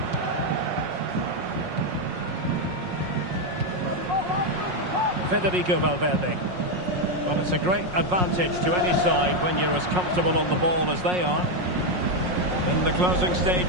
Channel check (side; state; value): left; late; 5.5 ms